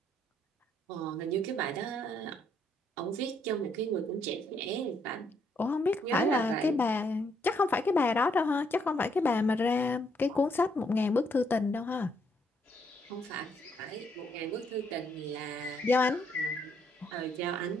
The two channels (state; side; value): normal; both; correlation 0.72